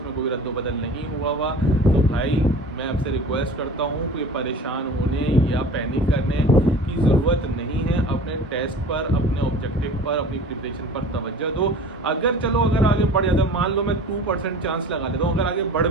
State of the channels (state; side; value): normal; both; correlation 0.41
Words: कोई रद्दोबदल नहीं हुआ। तो भाई मैं आपसे रिक्वेस्ट करता हूँ कि परेशान होने या पैनिक करने की ज़रूरत नहीं है। अपने टेस्ट पर, अपने ऑब्जेक्टिव पर, अपनी प्रिपरेशन पर तवज्जो दो। अगर आगे बढ़ जाता है, मान लो मैं 2% चांस लगा लेता हूँ, अगर आगे बढ़